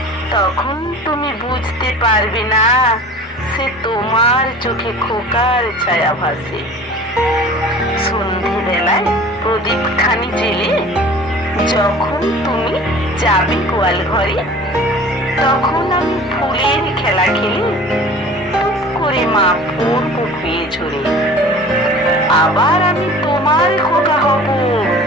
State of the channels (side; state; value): both; normal; correlation 0.43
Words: তখন তুমি বুঝতে পারবে না সে তোমার চোখে খোকার ছায়া ভাসে। সন্ধেবেলায় প্রদীপ খানি জেলে যখন তুমি যাবে গোয়াল ঘরে, তখন আমি ফুলের খেলা খেলে টুপ করে মা পড়বো খুঁয়ে ঝরে। আবার আমি তোমার খোকা হব,